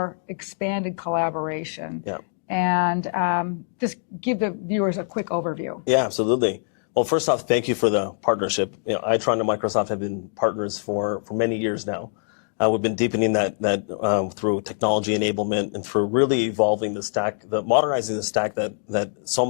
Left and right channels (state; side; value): silent; right; digital silence